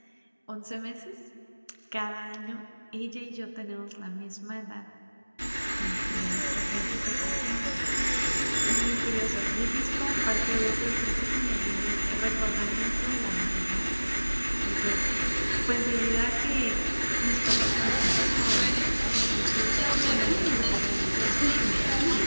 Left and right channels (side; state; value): both; inverted; correlation -1.00